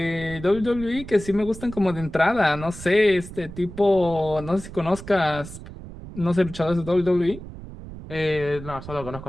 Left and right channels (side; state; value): right; noise; rumble, 13 dB below the sound